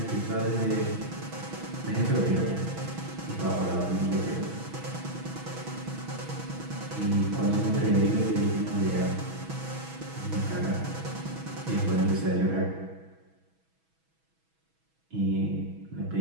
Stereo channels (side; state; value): left; late; 6.2 ms